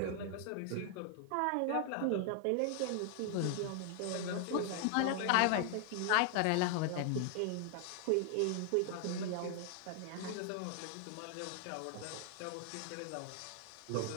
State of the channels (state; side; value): different; both; correlation 0.00